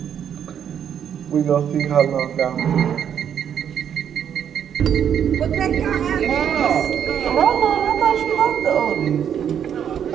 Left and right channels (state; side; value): quieter; left; 8.8 dB